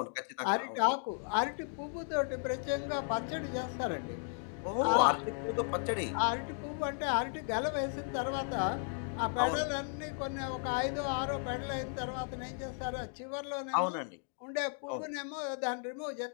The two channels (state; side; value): silent; right; 54 dB below the other